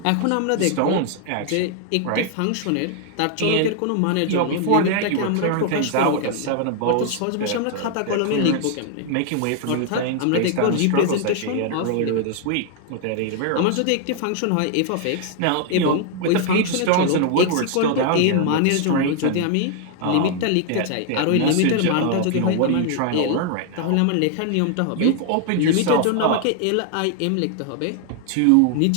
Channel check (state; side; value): different; both; correlation 0.00